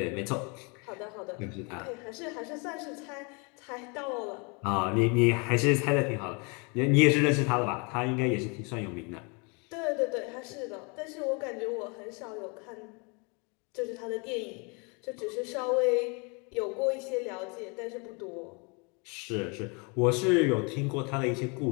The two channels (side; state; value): right; quieter; 32.0 dB